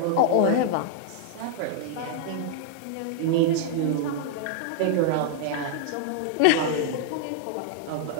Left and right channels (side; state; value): both; different; correlation -0.01